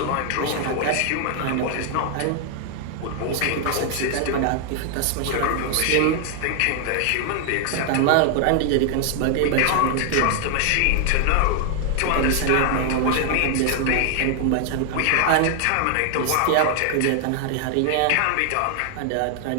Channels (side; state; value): both; different; correlation 0.00